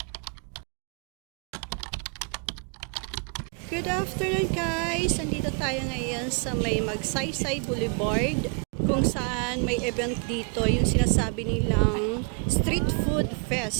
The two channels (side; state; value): left; quieter; 37.0 dB